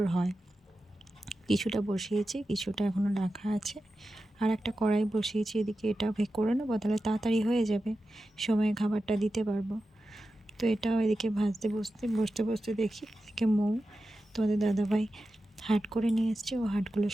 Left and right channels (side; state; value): both; normal; correlation 0.92